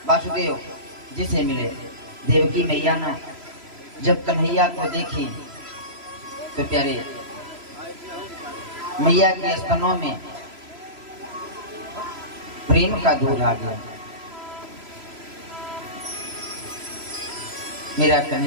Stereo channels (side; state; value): left; late; 3.0 ms